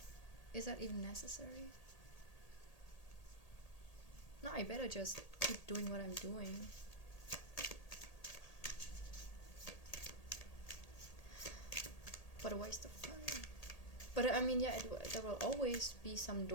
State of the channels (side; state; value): right; late; 1.8 ms